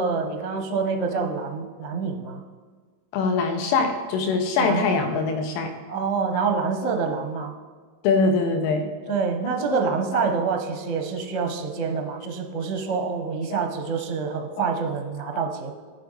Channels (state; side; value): late; right; 26 ms